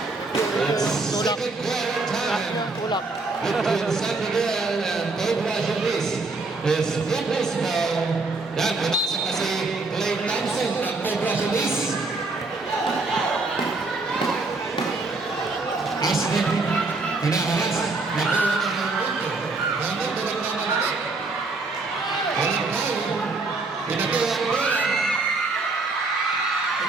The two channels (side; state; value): left; quieter; 3.6 dB